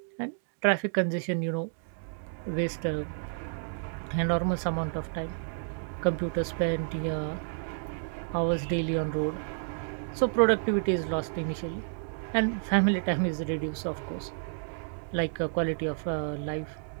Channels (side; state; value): left; silent; digital silence